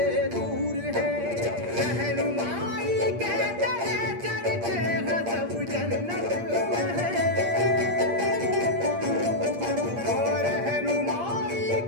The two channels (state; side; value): late; left; 8.6 ms